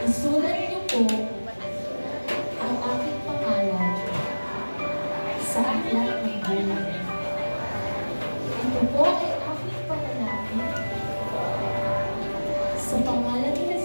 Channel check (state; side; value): inverted; both; correlation -1.00